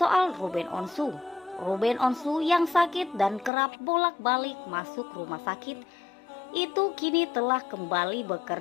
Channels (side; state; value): right; drops out; at 3.5 s